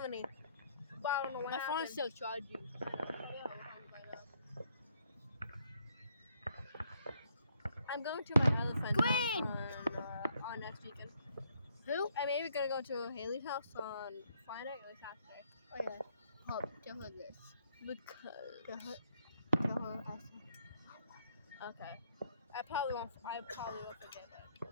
But I don't know what My happened. phone's still charging. I'm going to my other friend's Green! house on next weekend. Who? I'm maybe gonna go to Haley's house on Friday or Saturday. Oh yeah. Hold, tell her this. Because. Tell her I said. Okay. I probably won't forget that.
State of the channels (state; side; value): inverted; both; correlation -0.69